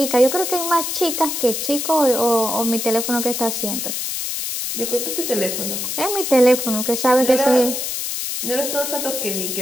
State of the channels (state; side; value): noise; left; hiss, 3 dB below the sound